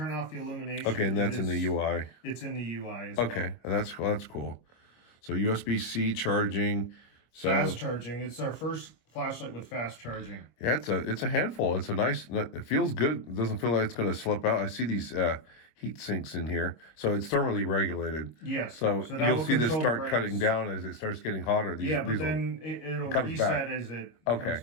off the illumination. Okay, and that's in the UI. It's in the UI as well. Okay, that's cool. So USB-C charging. So fast charging. It's our first flashlight with fast charging. Yeah, it's a handful. It's a nice. It feels good. It doesn't feel like it's going to slip out. I see these heat sinks in here, so it's thermally regulated. Yes. So, that you'll will see this control the start brakes. cutting down as it starts getting hotter. Yeah, but then it'll comes reset back. as it Okay. comes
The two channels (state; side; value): late; right; 25 ms